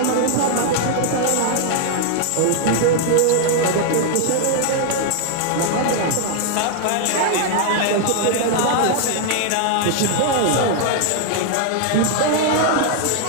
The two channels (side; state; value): both; different; correlation -0.01